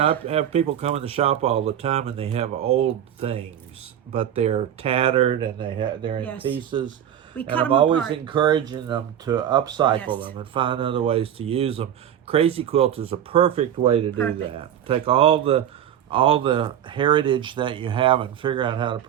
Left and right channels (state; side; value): quieter; left; 10.2 dB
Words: I have people come in the shop all the time and they have old things, but they're tattered and they're in Yes. pieces. We And cut I'm them always apart. encouraging them to upcycle Yes. them and find other ways to use them. Crazy Quilt is a perfect way to do Perfect. that. Take all the heritage that you have and figure out how to